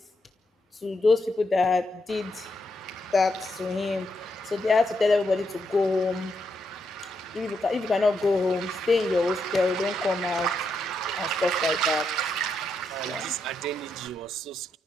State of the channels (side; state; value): both; normal; correlation 0.81